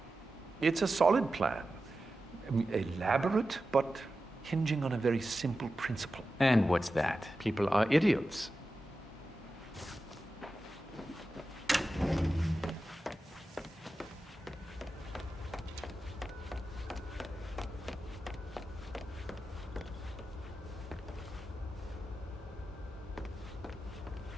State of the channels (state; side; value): normal; both; correlation 0.92